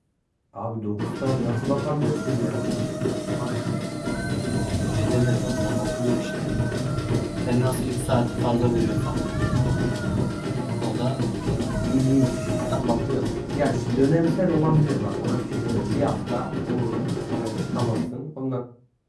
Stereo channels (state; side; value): identical; both; correlation 1.00